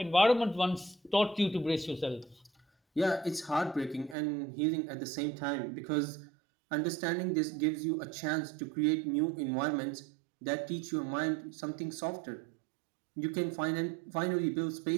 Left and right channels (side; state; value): left; drops out; at 4.2 s